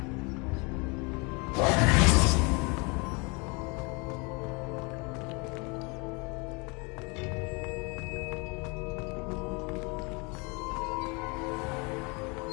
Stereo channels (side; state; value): right; quieter; 29.8 dB